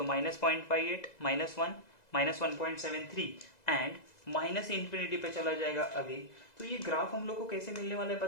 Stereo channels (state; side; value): late; right; 2.0 ms